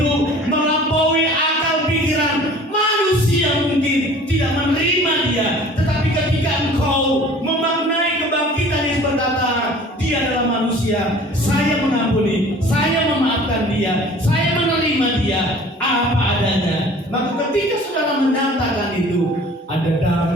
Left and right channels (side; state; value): both; normal; correlation 0.47